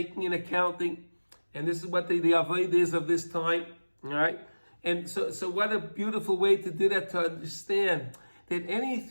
an accounting, and this is what the avodah is of this time, all right? And so what a beautiful way to do that, to understand that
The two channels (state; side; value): inverted; both; correlation -1.00